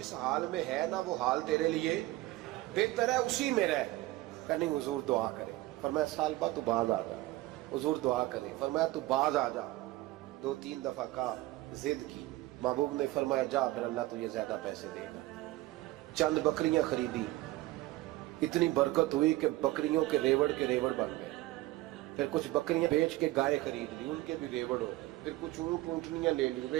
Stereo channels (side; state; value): left; quieter; 18.1 dB